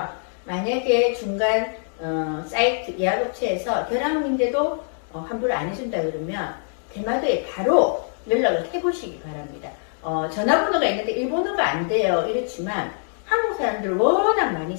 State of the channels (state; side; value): silent; right; 62 dB below the other